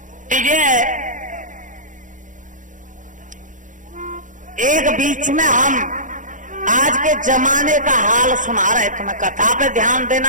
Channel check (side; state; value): left; late; 0.37 ms